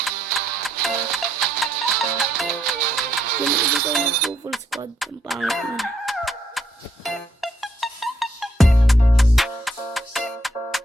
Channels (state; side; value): normal; both; correlation 0.74